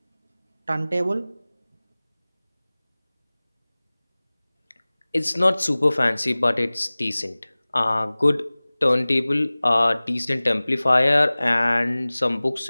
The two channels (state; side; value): inverted; both; correlation -0.99